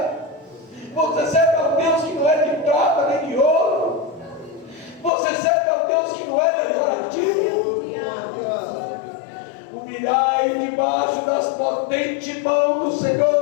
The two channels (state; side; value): drops out; right; at 5.1 s